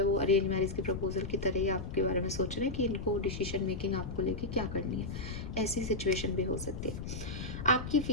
वो अरेंज मैरिज के प्रपोजल की तरह ही आपके बारे में सोच रहे हैं कि इनको डिसीजन मेकिंग आपको लेके क्या करनी है। ऐसी सिचुएशन भी हो सकती है। आपकी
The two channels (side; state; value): left; noise; rumble, 7 dB below the sound